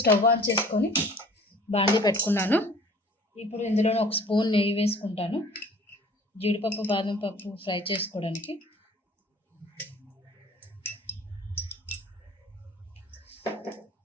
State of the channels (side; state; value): both; normal; correlation 0.49